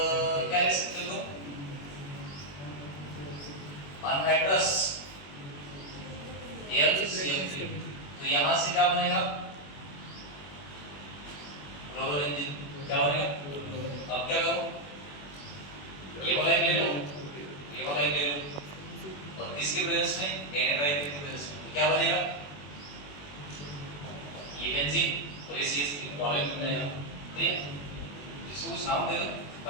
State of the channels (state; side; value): late; right; 21 ms